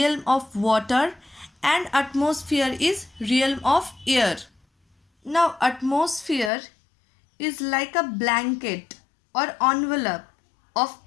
of water, and atmosphere is realm of air. Now atmosphere is like a blanket or envelope of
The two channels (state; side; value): drops out; right; at 6.5 s